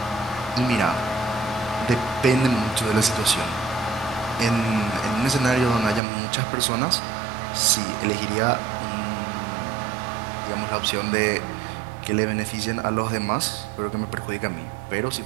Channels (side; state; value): left; drops out; at 6.0 s